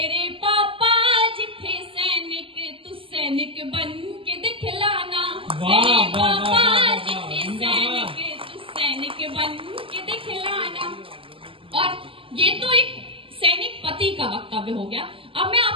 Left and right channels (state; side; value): late; left; 0.26 ms